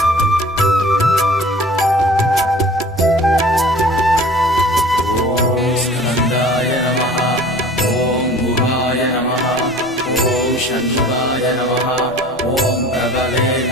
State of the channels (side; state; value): both; normal; correlation 0.45